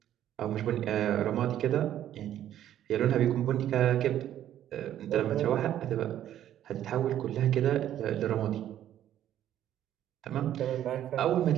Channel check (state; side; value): quieter; left; 11.5 dB